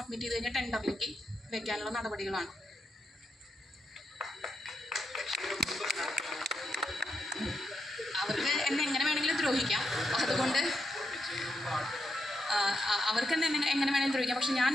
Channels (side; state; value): both; normal; correlation 0.84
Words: ചെയ്ത് കഴിഞ്ഞാൽ ടെൻഡറിലേക്ക് വെക്കാനുള്ള നടപടികളാണ്. അവർക്ക് എന്നെ എങ്ങനെ വേണമെങ്കിലും ദ്രോഹിക്കാം, അതുകൊണ്ട് അവർക്ക് എന്നെ എങ്ങനെ വേണമെങ്കിലും ദ്രോഹിക്കാം. പക്ഷെ ഞാൻ